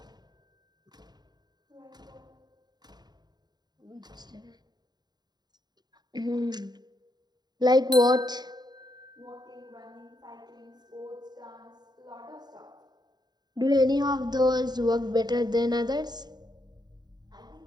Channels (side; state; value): left; late; 0.20 ms